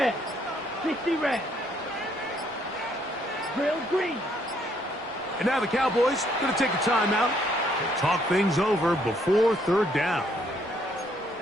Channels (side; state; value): both; normal; correlation 0.69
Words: 60 red. Drill green. And now the Cowboys going to take a timeout and talk things over before third down.